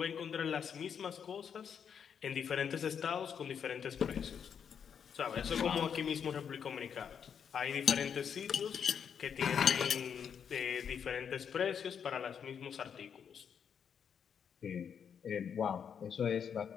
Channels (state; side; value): quieter; right; 7.5 dB